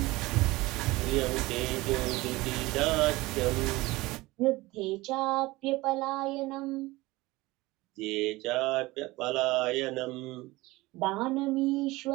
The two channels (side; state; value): left; quieter; 20.5 dB